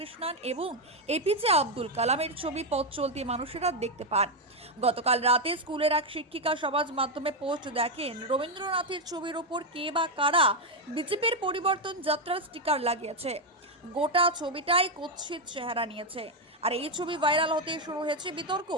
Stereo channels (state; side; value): normal; both; correlation 0.04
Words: এবং এপিজে আব্দুল কালামের ছবি পথ চলতি মানুষেরা দেখতে পান। গতকাল রাতে স্কুলের এক শিক্ষিকা সমাজ মাধ্যমে পোস্ট দেখেন, রবীন্দ্রনাথের ছবির ওপর কে বা কারা বিজেপির পরিবর্তন যাত্রার স্টিকার লাগিয়েছে। গোটা ছবিটাই কুৎসিত চেহারা নিয়েছে। আর এই ছবি ভাইরাল হতে শুরু হয়েছে বিতর্ক।